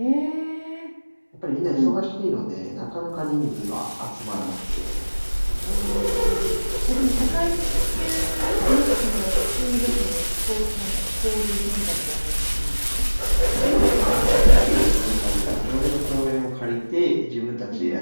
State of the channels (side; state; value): both; inverted; correlation -1.00